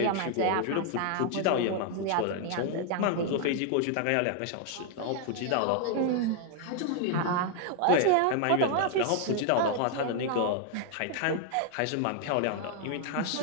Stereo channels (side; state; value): both; different; correlation 0.00